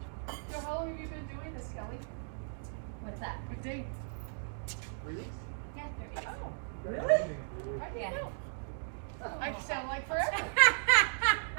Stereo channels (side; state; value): left; silent; digital silence